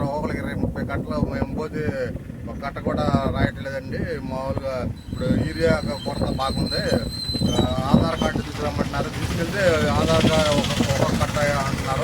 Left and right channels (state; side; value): identical; both; correlation 1.00